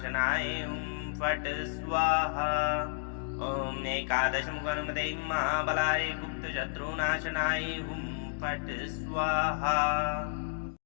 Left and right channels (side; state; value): right; silent; digital silence